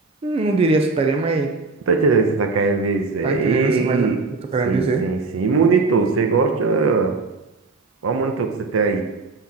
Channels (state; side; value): quieter; left; 3.8 dB